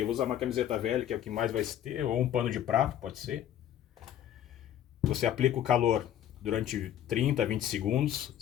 eu vou usar uma camiseta velha, que é o que mais vai ter, ou um pano de prato, pode ser. Você aplica o calor durante 30 a 20 segundos,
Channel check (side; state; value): right; quieter; 10.8 dB